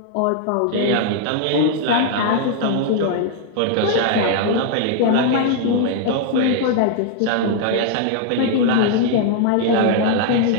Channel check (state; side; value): different; both; correlation 0.00